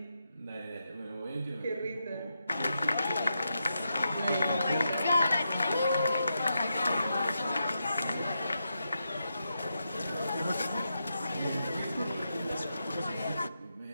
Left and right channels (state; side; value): inverted; both; correlation -0.85